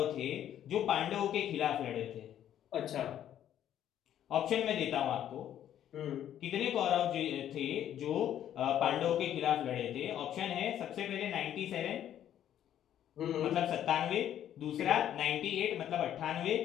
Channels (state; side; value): quieter; right; 10.8 dB